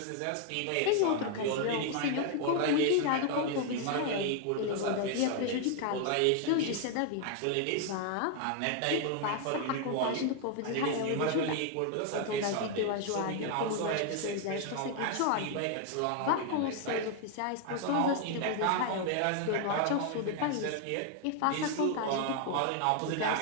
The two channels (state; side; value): different; both; correlation 0.00